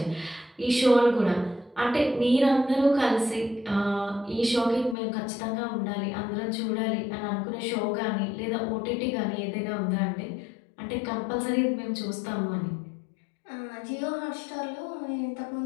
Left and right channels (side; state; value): right; drops out; at 5.0 s